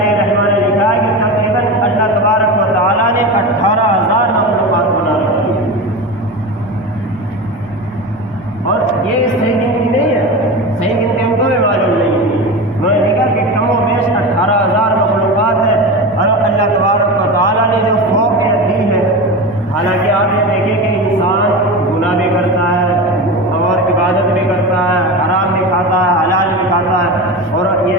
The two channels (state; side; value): normal; both; correlation 0.25